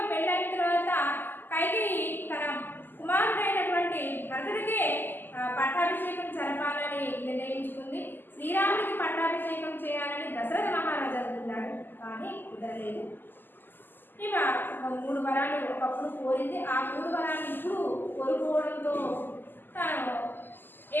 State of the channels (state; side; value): late; right; 0.092 ms